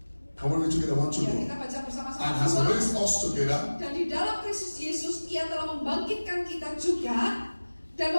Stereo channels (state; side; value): inverted; both; correlation -1.00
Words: Can we read together? 1, 2, Ya, 3. kita baca bersama-sama. And has raised us together. Dan di dalam Kristus Yesus, Ia telah membangkitkan kita juga dan